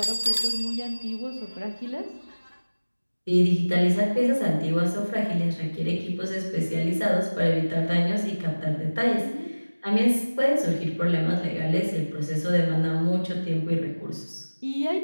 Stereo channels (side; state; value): both; inverted; correlation -1.00